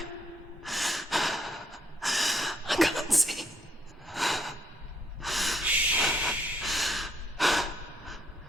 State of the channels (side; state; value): both; normal; correlation 0.71